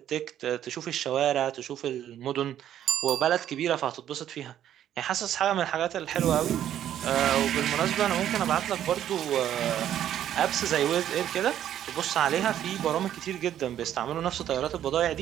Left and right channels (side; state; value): left; quieter; 11.0 dB